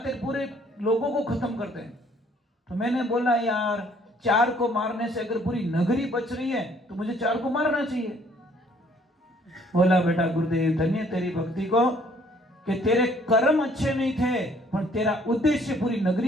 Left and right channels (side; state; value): both; normal; correlation 0.61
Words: पूरे लोगों को खत्म करते हैं। तो मैंने बोला यार 4 को मारने से अगर पूरी नगरी बच रही है तो मुझे 4 को मारना चाहिए। बोला बेटा गुरुदेव धन्य तेरी भक्ति को कि तेरे कर्म अच्छे नहीं थे, पर तेरा उद्देश्य पूरी